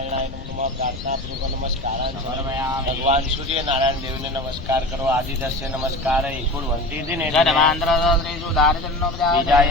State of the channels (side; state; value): left; noise; rumble, 12 dB below the sound